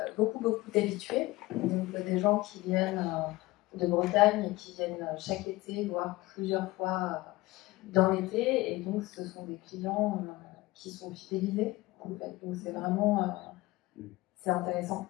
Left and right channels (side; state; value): right; quieter; 19.8 dB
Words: beaucoup d'habitués, donc des gens qui viennent de Bretagne et qui viennent chaque été, voire plusieurs fois dans l'été, et donc ce sont des clients qui sont fidélisés en fait. Donc c'est vraiment c'est intéressant